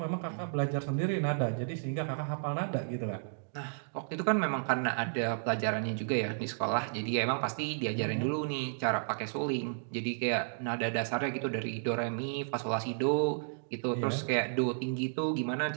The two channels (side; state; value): left; silent; digital silence